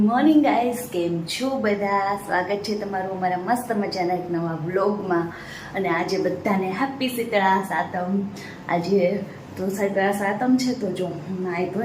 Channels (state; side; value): identical; both; correlation 1.00